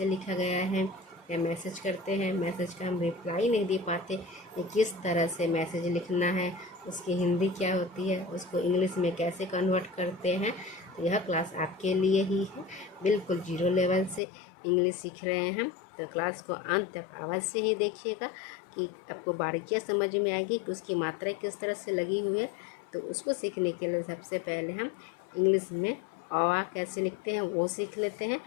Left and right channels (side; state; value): right; drops out; at 14.2 s